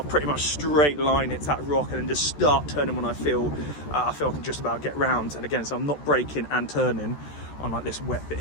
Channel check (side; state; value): right; late; 14 ms